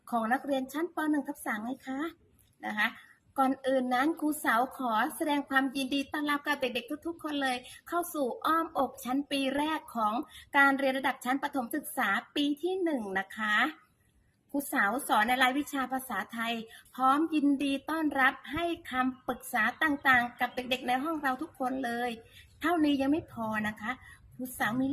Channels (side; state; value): both; identical; correlation 1.00